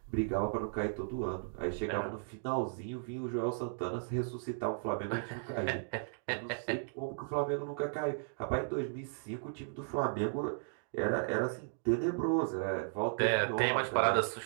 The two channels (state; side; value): silent; left; digital silence